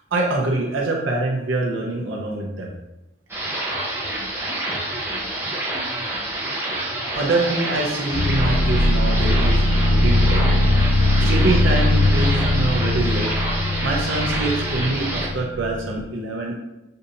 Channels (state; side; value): normal; both; correlation 0.66